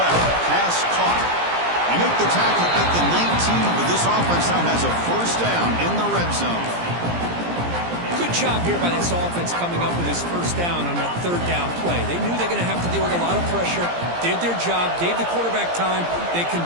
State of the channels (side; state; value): left; late; 17 ms